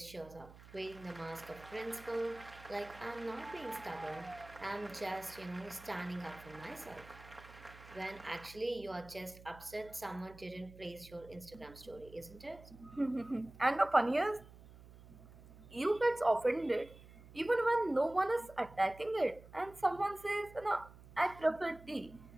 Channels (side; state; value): right; noise; hum, 19 dB below the sound